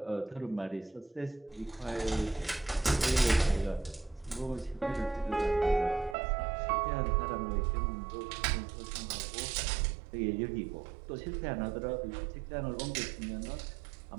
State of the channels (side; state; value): left; drops out; at 6.2 s